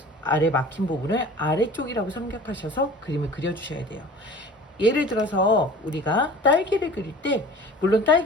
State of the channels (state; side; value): normal; both; correlation 0.43